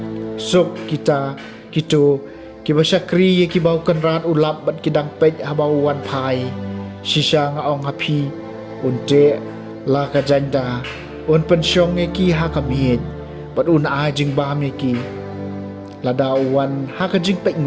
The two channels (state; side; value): identical; both; correlation 1.00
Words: suk kita kitu ki ba syakri ki bau kan rat ulap bat ki dang pej habau wan phai shisha nga ong hapi unte la ka janda un pensyong ki ha kamit pat un a jing ba mi ki la dawan ha ka jing pek